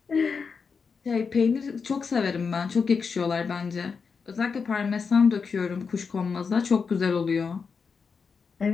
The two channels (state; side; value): quieter; right; 5.5 dB